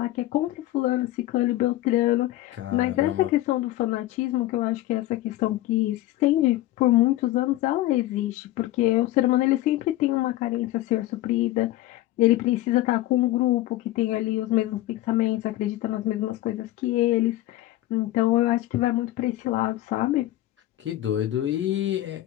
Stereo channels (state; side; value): quieter; right; 15.7 dB